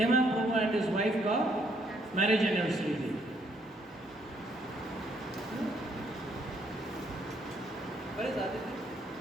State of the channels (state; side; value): normal; both; correlation 0.70